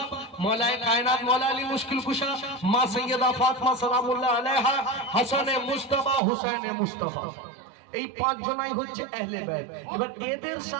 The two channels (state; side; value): drops out; left; at 6.2 s